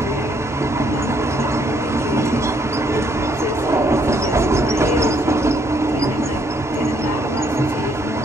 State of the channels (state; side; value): normal; both; correlation 0.69